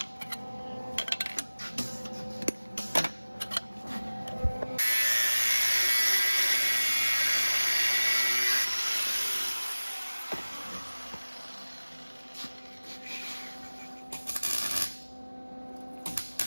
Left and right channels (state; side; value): inverted; both; correlation -1.00